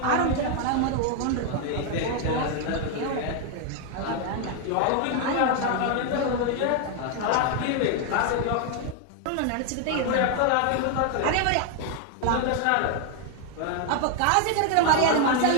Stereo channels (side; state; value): both; different; correlation 0.00